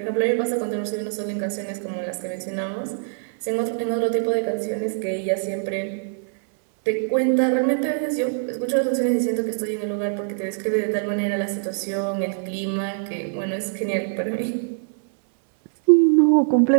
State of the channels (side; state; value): left; silent; 63 dB below the other